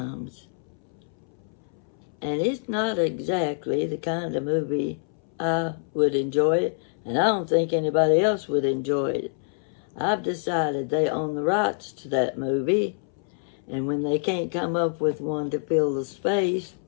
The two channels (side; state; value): right; silent; 60 dB below the other